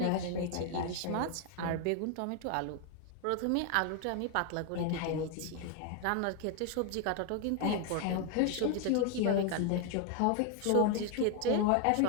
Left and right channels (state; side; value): different; both; correlation 0.01